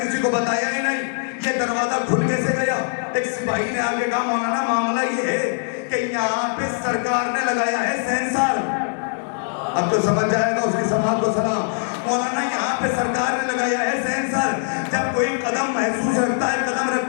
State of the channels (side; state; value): right; silent; digital silence